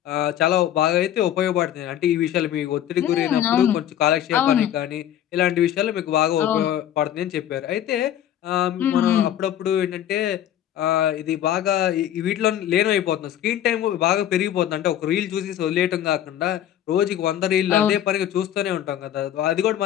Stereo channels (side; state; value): right; quieter; 11.1 dB